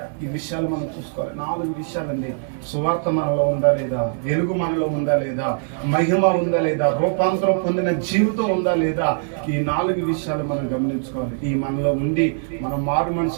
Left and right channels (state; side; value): silent; left; 60 dB below the other